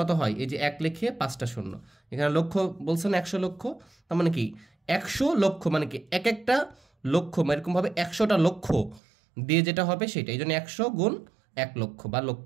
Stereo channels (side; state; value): left; drops out; at 9.0 s